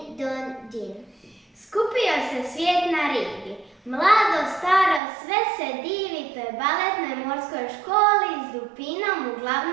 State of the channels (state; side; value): drops out; left; at 5.0 s